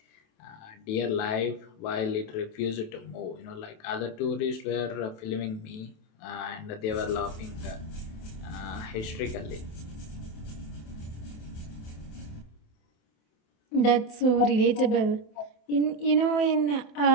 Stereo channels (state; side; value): late; right; 27 ms